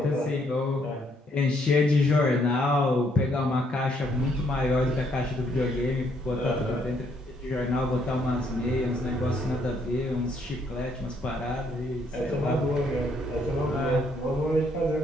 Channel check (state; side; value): normal; both; correlation 0.70